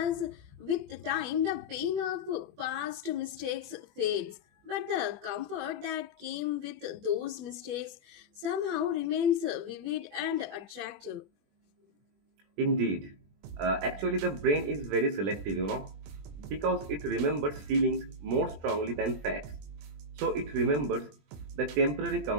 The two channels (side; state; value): left; late; 20 ms